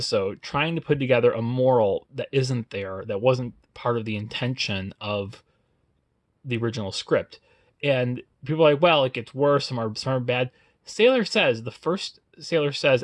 trying to put together a moral that isn't there, that wasn't part of the intention of the original script. And people are like, well, it gets worse, some are bad. Sailor Says, the first Sailor Says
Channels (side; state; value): both; identical; correlation 1.00